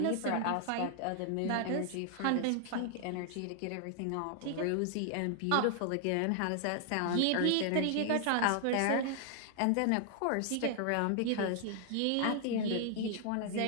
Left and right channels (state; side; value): different; both; correlation 0.00